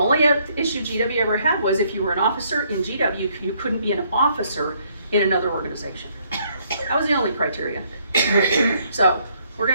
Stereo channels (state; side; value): inverted; both; correlation -0.68